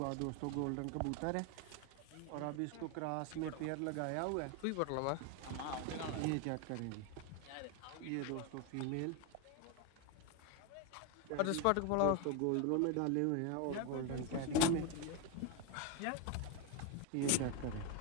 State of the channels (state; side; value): different; both; correlation 0.02